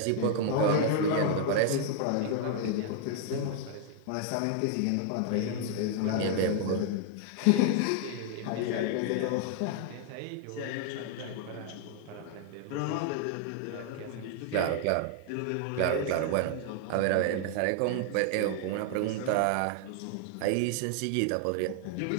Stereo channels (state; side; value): different; both; correlation 0.00